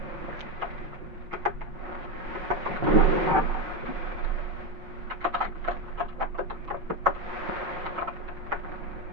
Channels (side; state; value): left; late; 5.4 ms